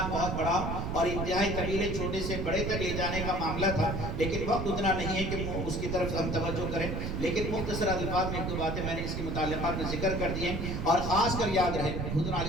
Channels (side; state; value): right; noise; rumble, 2 dB below the sound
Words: بہت بڑا اور انتہائی طویل چھوٹے سے بڑے تک لے جانے کا معاملہ تھا، لیکن وقت اتنا نہیں ہے کہ اس کی طرف ہم توجہ کریں، لیکن مختصر الفاظ میں ایک دو باتیں میں نے اس کی متعلقات میں ذکر کر دی ہیں۔ اور خاص کر یاد رہے حضور